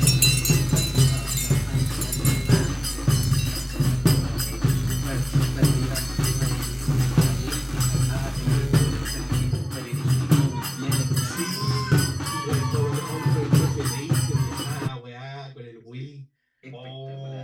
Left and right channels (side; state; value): both; identical; correlation 1.00